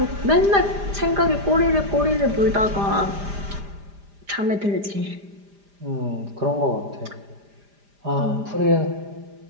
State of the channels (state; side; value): late; left; 5.0 ms